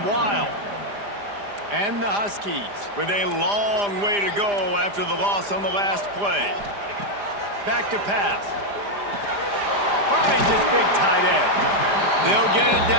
wild. And the Huskies with a long way to go after the loss on the last play. Back to pass. Finds his big tight end. They'll get it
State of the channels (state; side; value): late; left; 4.9 ms